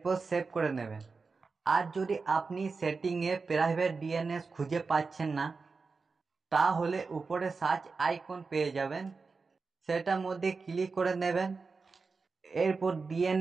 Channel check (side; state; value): left; quieter; 4.5 dB